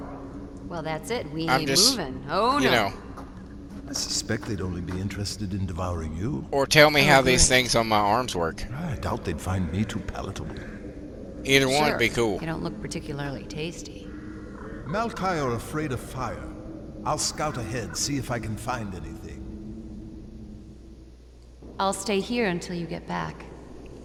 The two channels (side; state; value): both; identical; correlation 1.00